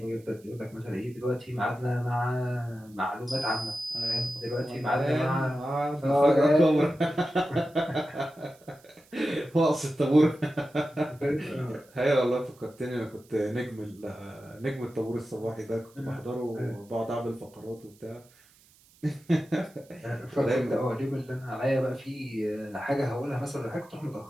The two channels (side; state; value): right; noise; hiss, 28 dB below the sound